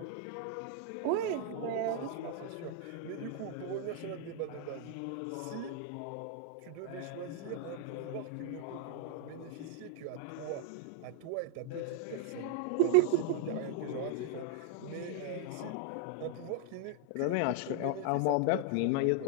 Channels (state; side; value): different; both; correlation 0.00